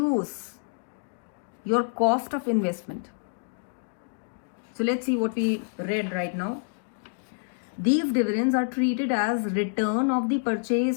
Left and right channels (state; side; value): silent; right; digital silence